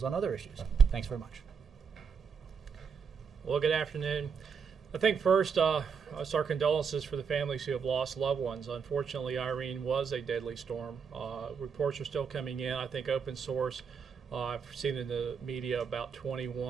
on other issues. Thanks very much. Well, good afternoon. I think first, our condolences for the families who have lost loved ones. Unfortunately, Irene was a deadly storm. Reports are still coming in. I think open source, I've seen in the media about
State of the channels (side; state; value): left; quieter; 6.3 dB